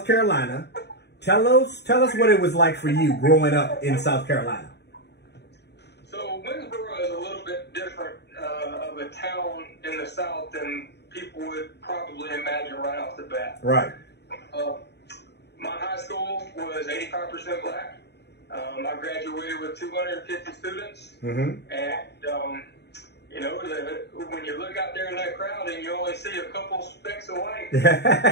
Carolina. Tell us what it was like for you growing up in South Carolina. So Winnsboro is a little bit different of a town in the South than people would probably imagine right off the bat. My high school was 85% black. I graduated with 250 students. And, you know, when you look out there in that crowd and you only see a couple specks of white, it's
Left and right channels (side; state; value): right; late; 0.49 ms